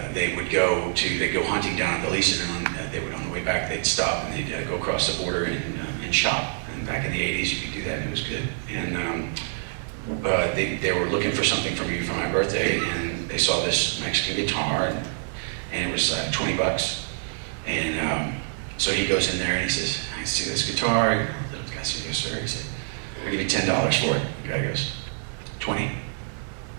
they'd go hunting down at the Belize, and they would, on the way back, they'd stop and they'd go across the border and shop. And back in the 80s, you could do that, and it was good. And they were looking for something for me for my birthday, and they saw this Mexican guitar, and it was $20. And so he goes in there and he says, "I see this guitar." The guy says, "Yes, sir." He said, "I'll give you $10 for it." The guy goes, "20."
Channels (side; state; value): left; silent; digital silence